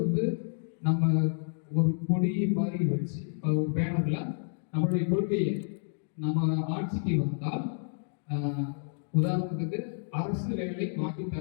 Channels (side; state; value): right; silent; digital silence